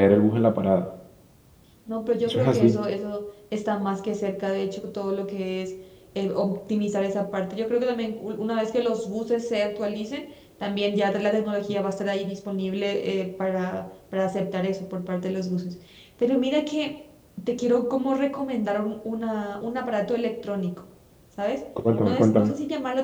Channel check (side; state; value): both; identical; correlation 1.00